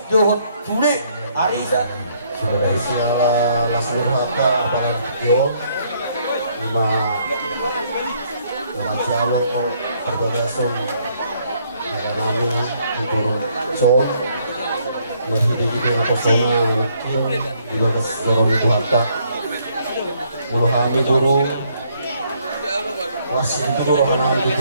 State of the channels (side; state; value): both; inverted; correlation -0.68